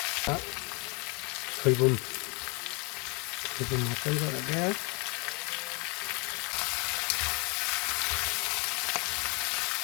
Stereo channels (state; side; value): quieter; right; 30.0 dB